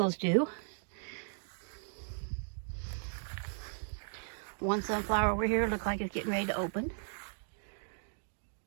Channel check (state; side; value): silent; left; digital silence